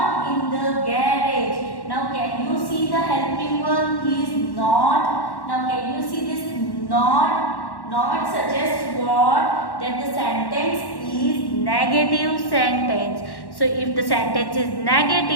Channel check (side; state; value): right; late; 1.1 ms